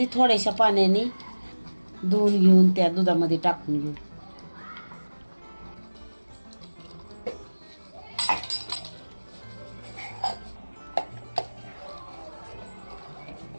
थोड्याशा पाण्याने धुवून घेऊन त्या दुधामध्ये टाकून घेऊ।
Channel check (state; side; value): inverted; both; correlation -1.00